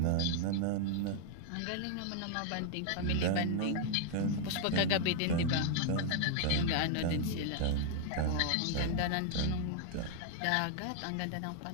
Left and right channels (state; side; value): different; both; correlation 0.00